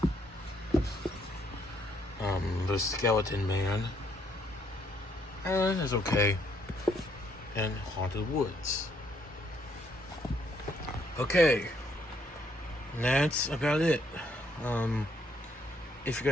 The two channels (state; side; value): normal; both; correlation 0.70